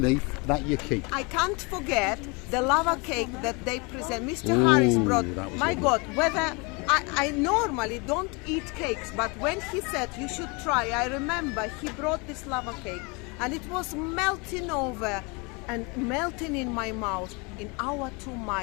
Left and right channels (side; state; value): right; quieter; 29.5 dB